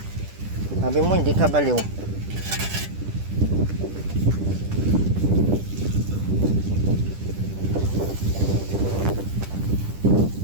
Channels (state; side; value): late; left; 10 ms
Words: Sabi mo, hindi ka baliw.